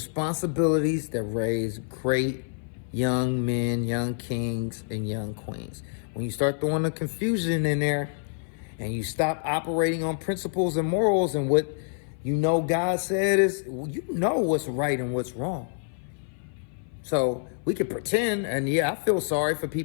that raise great young men, young kings, and young queens. When you start throwing the confusion in there and you stop operating on principles and morals and what You know God said is, you know what's right and what's wrong. So we could pretend, and yeah, I feel sorry for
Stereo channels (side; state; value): right; silent; 57 dB below the other